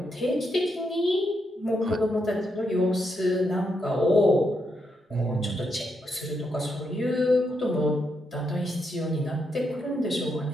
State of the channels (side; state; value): both; normal; correlation 0.81